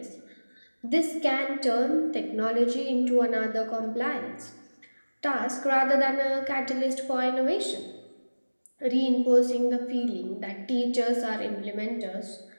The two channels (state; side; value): inverted; both; correlation -1.00